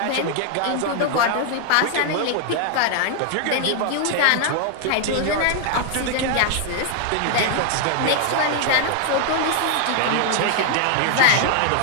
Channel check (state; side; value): different; both; correlation 0.00